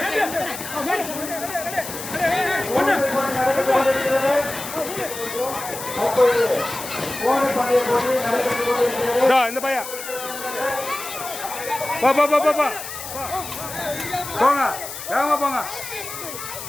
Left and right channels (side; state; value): left; noise; hiss, 9 dB below the sound